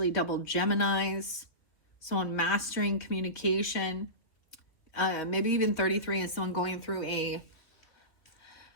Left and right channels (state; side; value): late; right; 2.8 ms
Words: double Geminis. Someone mastering communication. Maybe even 33 is someone going through a